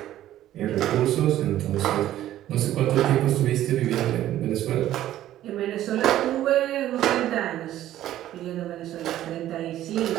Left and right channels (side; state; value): left; quieter; 13.1 dB